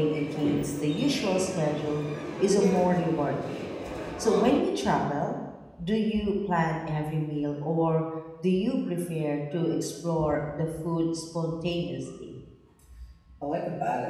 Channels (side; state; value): both; identical; correlation 1.00